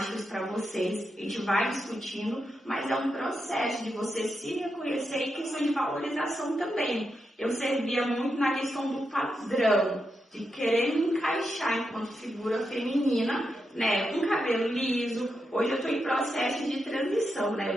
para vocês, a gente vai discutindo, mas é um processo de você se reconhecer e questão de valorização também. Eu servia muito na questão do padrão, de querer me encaixar enquanto figura feminina, né, com cabelo liso. Hoje eu estou em processo de transição, né, eu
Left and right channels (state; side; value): normal; both; correlation 0.86